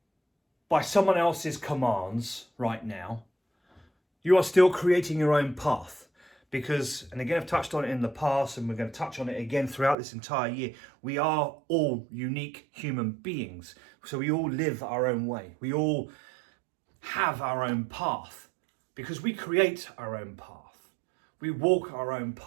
by someone else's commands right now, you are still creating your own path. Because, and again, I've touched on it in the past, and we're going to touch on it again throughout this entire year, we are all unique human beings. So we all live our own way. We all have our own path because we create our own path. We walk our own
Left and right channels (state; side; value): drops out; left; at 10.0 s